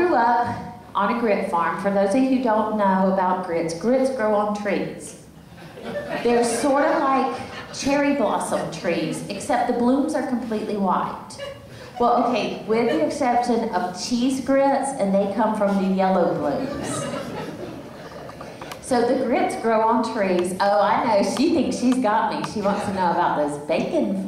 up on a grit farm. For those of you who don't know about grits, grits grow on trees. They're sort of like cherry blossom trees, except the blooms are completely white. Well, okay, with the exception of cheese grits, and they come from the yellow blooms. So the grits grow on trees. Oh, I know, she thinks she's got me. She wants to know about those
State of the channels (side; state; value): both; identical; correlation 1.00